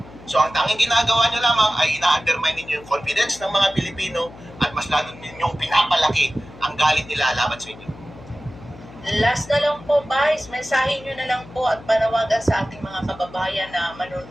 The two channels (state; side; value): noise; left; hum, 19 dB below the sound